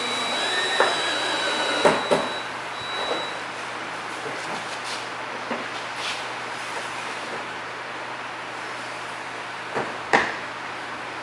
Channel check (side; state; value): both; identical; correlation 1.00